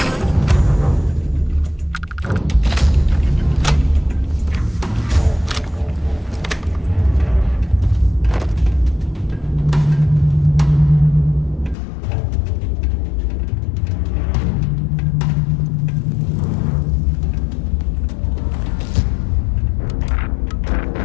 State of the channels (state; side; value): drops out; right; at 11.8 s